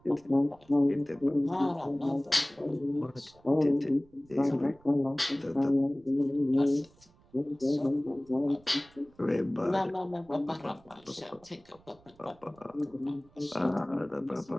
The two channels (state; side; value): noise; right; rumble, 28 dB below the sound